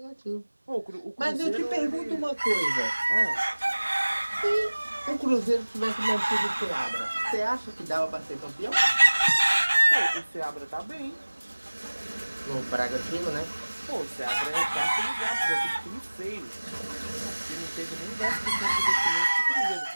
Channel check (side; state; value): both; inverted; correlation -1.00